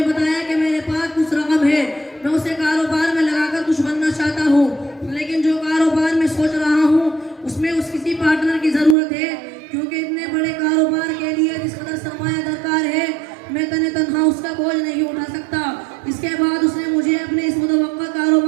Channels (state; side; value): drops out; left; at 9.0 s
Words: बताया कि मेरे पास कुछ रकम है, मैं उसे कारोबार में लगाकर कुछ बनना चाहता हूँ, लेकिन जो कारोबार में सोच रहा हूँ उसमें उस किसी पार्टनर की ज़रूरत है, क्योंकि इतने बड़े कारोबार के लिए जिस कदर सरमाया दरकार है मैं तन्हा उसका बोझ नहीं उठा सकता। इसके बाद उसने मुझे अपने इस मुतवक्का